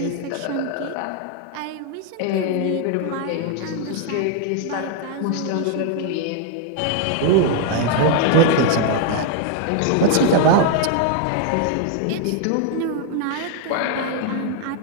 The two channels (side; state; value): both; different; correlation 0.00